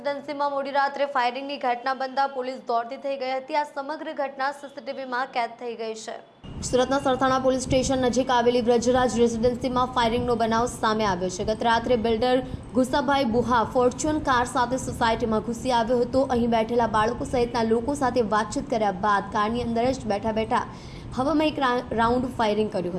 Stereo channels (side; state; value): both; identical; correlation 1.00